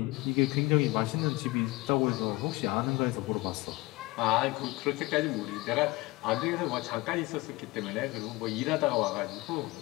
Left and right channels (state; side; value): quieter; right; 22.1 dB